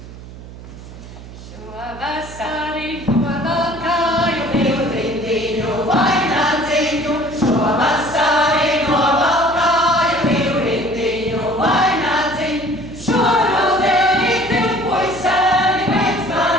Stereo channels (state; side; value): noise; right; hum, 15 dB below the sound